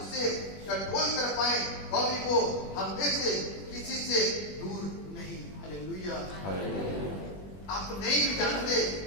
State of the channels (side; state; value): right; late; 21 ms